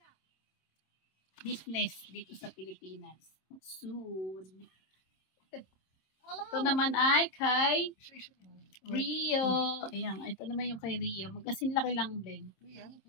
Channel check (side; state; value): right; late; 27 ms